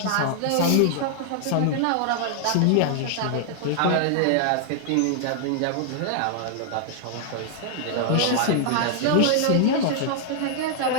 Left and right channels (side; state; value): both; different; correlation 0.00